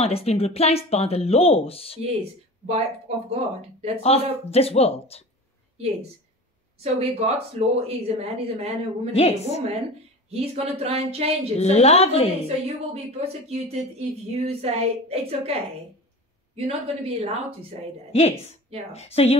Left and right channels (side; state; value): both; normal; correlation 0.34